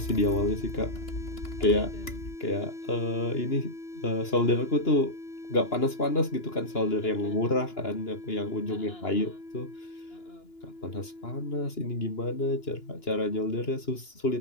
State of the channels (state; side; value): late; right; 2.9 ms